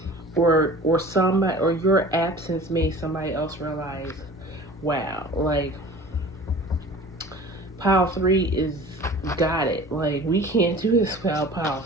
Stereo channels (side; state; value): both; normal; correlation 0.42